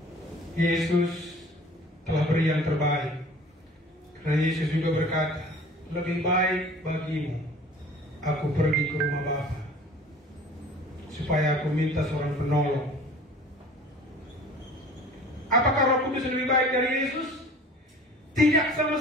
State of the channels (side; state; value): both; normal; correlation 0.46